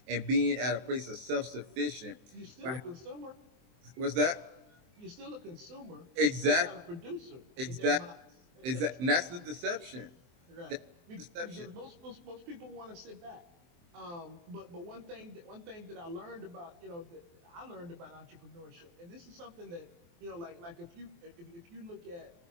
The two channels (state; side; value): late; left; 23 ms